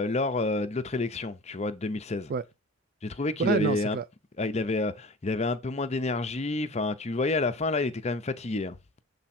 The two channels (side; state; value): both; normal; correlation 0.38